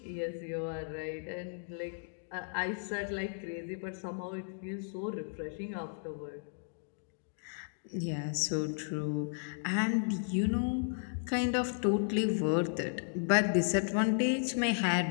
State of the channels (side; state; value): right; silent; digital silence